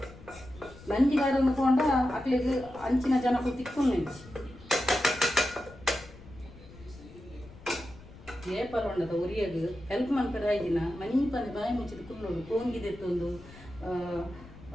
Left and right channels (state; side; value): noise; left; rumble, 19 dB below the sound